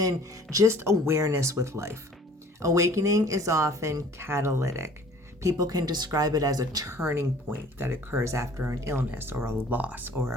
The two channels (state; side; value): normal; both; correlation 0.51